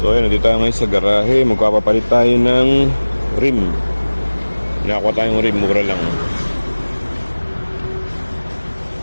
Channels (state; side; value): inverted; both; correlation -1.00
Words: So ayun, nandito tayo ngayon sa garahe. Magpapapalit tayo ng rim. Nakakuha tayong rim, mura lang.